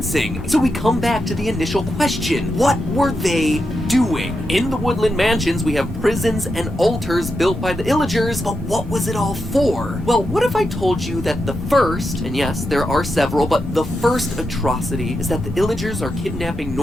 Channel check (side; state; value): both; normal; correlation 0.86